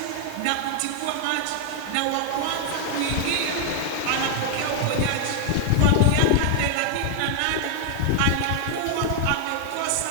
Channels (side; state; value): both; different; correlation 0.00